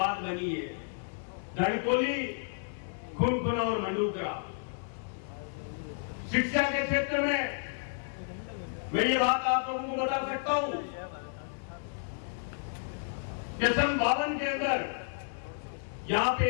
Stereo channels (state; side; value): silent; right; digital silence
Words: बनी है, धनकोली, खुनखुना और मंडूकरा। शिक्षा के क्षेत्र में मैं ये बात आप लोगों को बता सकता हूं कि सन 52 के अंदर यहां पे